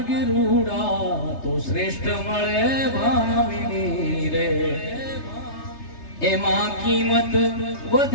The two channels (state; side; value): late; right; 3.3 ms